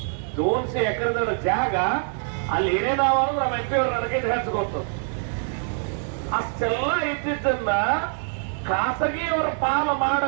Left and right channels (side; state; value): left; silent; 55 dB below the other